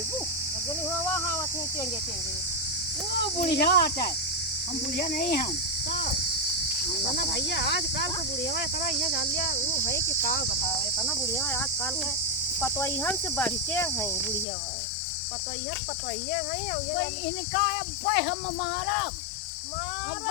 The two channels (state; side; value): drops out; right; at 14.5 s